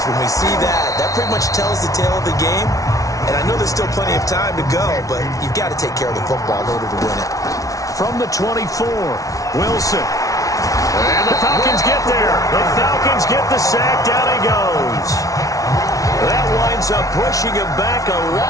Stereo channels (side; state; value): right; late; 0.17 ms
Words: when we see that, that pretty much tells the tale of the game. And I know there's still plenty of time to go, but you've got to take care of the football in order to win it. From the 24, Wilson. And the Falcons get there. The Falcons get the sack. Down he goes. That winds up pushing him back 11